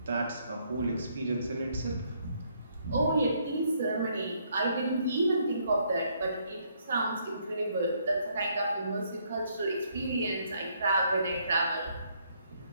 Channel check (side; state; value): both; inverted; correlation -0.70